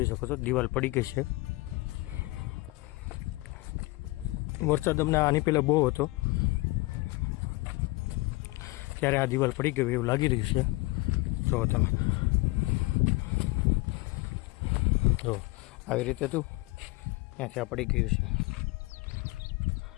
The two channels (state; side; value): quieter; right; 22.7 dB